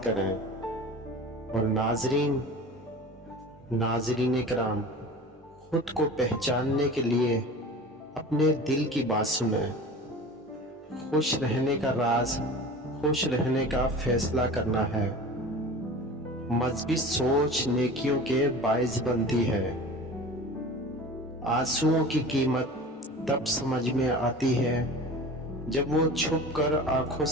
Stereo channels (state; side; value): normal; both; correlation 0.37